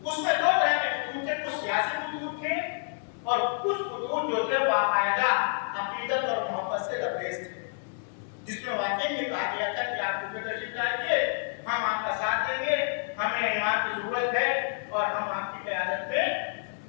उसमें 2 तरह के खुतूत थे, कुछ सियासी खुतूत थे और कुछ खुतूत जो थे बाकायदा अकीदत और मोहब्बत से लबरेज थे जिसमें वाकई में कहा गया था कि आप कूफे तशरीफ लाइए, हम आपका साथ देंगे, हमें इमाम की जरूरत है और हम आपकी क़यादत में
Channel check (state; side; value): silent; right; digital silence